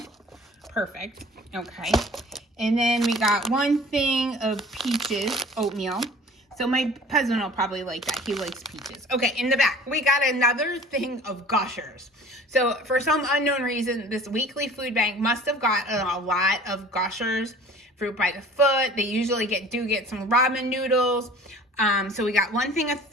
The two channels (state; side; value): normal; both; correlation 0.46